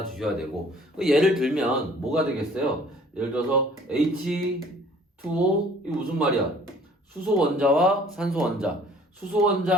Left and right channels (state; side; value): normal; both; correlation 0.54